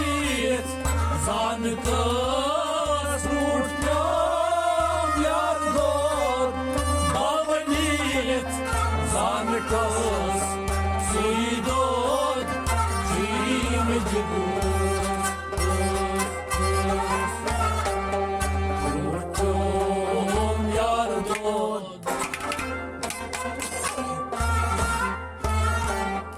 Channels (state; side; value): identical; both; correlation 1.00